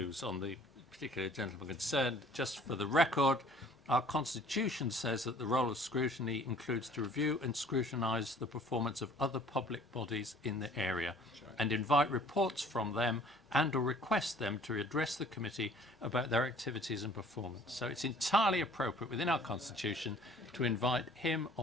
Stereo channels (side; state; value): both; normal; correlation 0.53